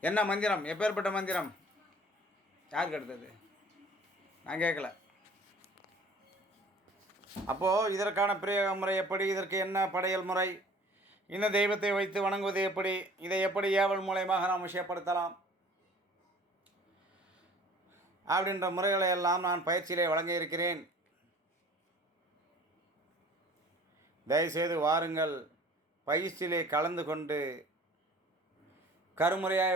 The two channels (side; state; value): both; normal; correlation 0.49